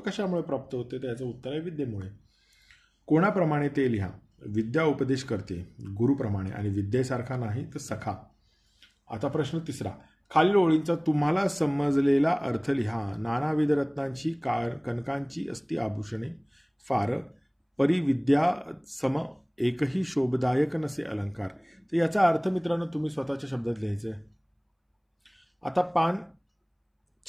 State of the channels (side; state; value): both; identical; correlation 1.00